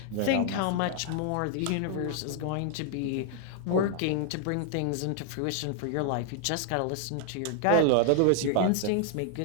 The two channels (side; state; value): both; different; correlation 0.00